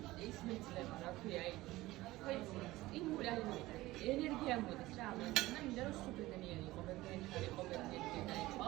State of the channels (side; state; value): left; quieter; 18.2 dB